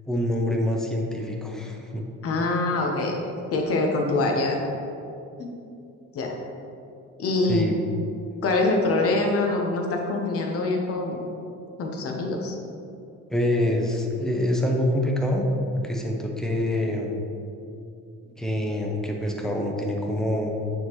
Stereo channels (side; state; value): both; normal; correlation 0.44